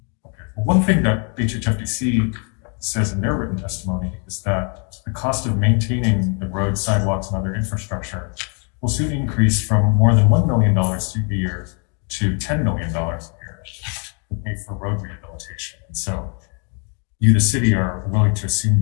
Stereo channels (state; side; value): quieter; right; 38.3 dB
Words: Well, one thing that HHFDC says in their written testimony is that the cost of maintaining the roads, sidewalks, and other infrastructure will soon increase from more than $1 million a year to $10 million a year to pay for road rehabilitation. And so you, the city, are willing to assume